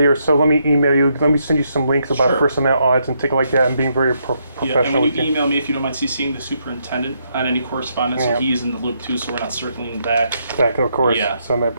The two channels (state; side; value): inverted; both; correlation -0.77